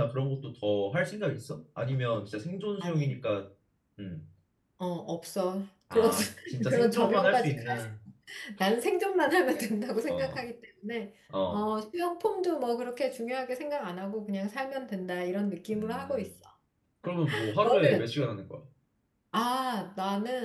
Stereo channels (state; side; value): identical; both; correlation 1.00